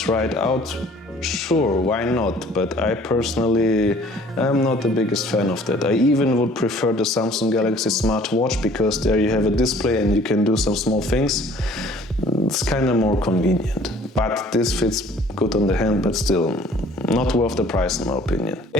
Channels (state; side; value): normal; both; correlation 0.53